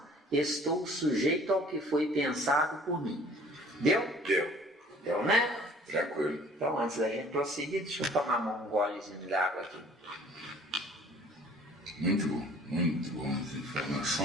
estou sujeito ao que foi pensado por mim. Deu? Deu, né? Tranquilo. Então, antes da gente prosseguir, deixa eu tomar um golezinho de água aqui. Muito bom as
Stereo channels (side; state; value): both; normal; correlation 0.52